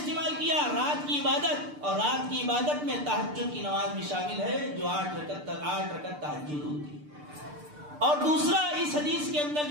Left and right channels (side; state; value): left; late; 6.7 ms